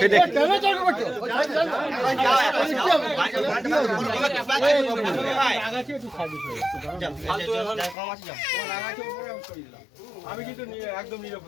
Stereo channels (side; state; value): right; drops out; at 8.0 s